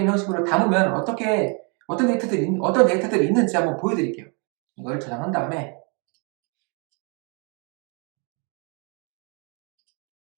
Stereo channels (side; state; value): left; quieter; 35.5 dB